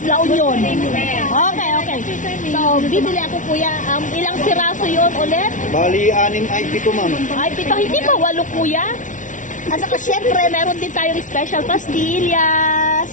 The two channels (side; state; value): right; late; 0.37 ms